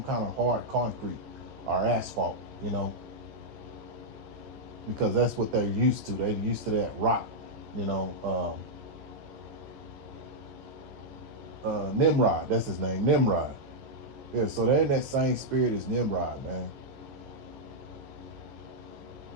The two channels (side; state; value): left; late; 14 ms